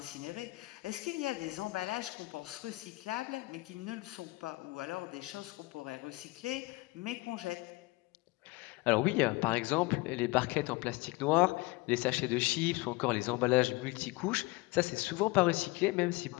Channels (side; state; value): right; quieter; 22.6 dB